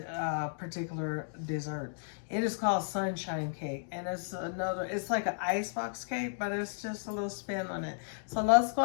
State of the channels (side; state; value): right; silent; digital silence